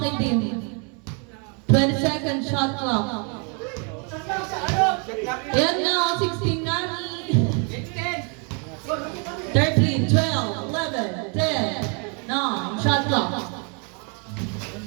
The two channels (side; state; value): left; quieter; 36.4 dB